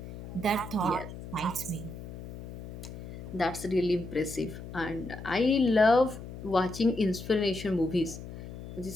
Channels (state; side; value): noise; left; hum, 11 dB below the sound